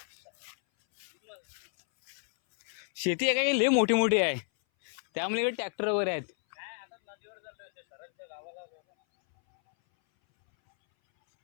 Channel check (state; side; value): silent; right; 57 dB below the other